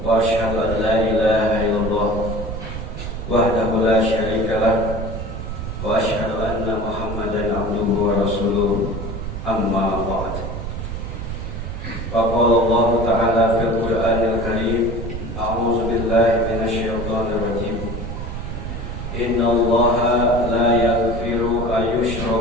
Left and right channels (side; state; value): right; noise; rumble, 6 dB below the sound